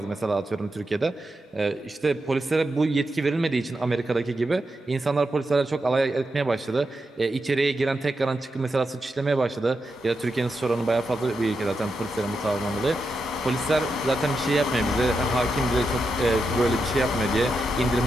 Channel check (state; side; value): normal; both; correlation 0.86